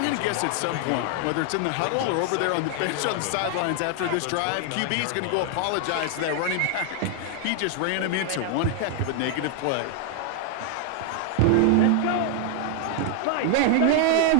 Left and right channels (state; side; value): different; both; correlation 0.00